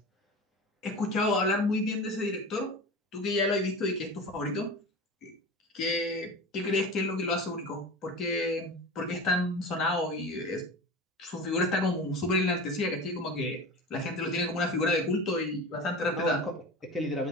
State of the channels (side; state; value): both; normal; correlation 0.31